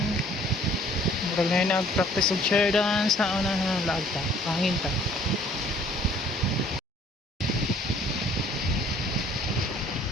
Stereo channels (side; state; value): both; normal; correlation 0.57